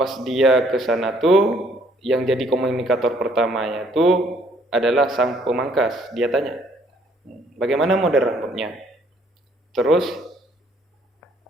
dia ke sana tuh yang jadi komunikator pertamanya tuh adalah sang pemangkas. Dia tanya, bagaimana model rambutnya? Terus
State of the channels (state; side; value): normal; both; correlation 0.64